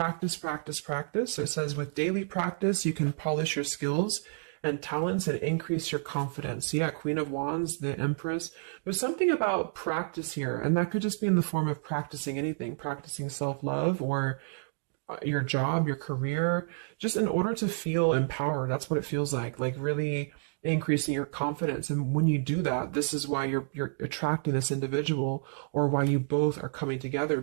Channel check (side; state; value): left; silent; digital silence